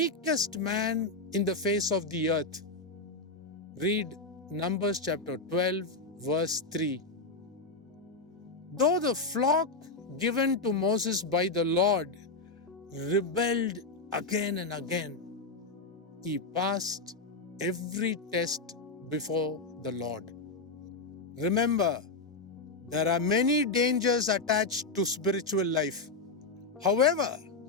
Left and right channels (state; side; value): quieter; right; 3.5 dB